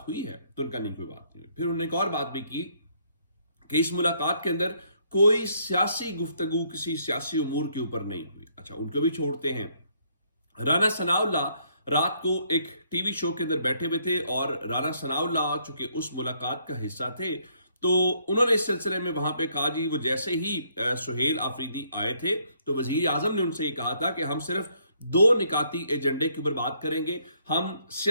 हुई है? तो उनका नहीं, कोई बात नहीं हुई। फिर उन्होंने एक और बात भी की कि इस मुलाकात के अंदर कोई सियासी गुफ्तगू किसी सियासी उमूर के ऊपर नहीं हुई। अच्छा, उनको भी छोड़ते हैं। राना सनाउल्लाह रात को एक टीवी शो के अंदर बैठे हुए थे और राना सनाउल्लाह चूंकि उस मुलाकात का हिस्सा थे तो उन्होंने इस सिलसिले में वहां पे कहा, जी वो जैसे ही सुहेल आफरीदी आए थे तो वजीर आजम ने उनसे ये कहा था कि हम सिर्फ दो निकाती एजेंडे के ऊपर बात करेंगे, हम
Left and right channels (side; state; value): both; inverted; correlation -0.69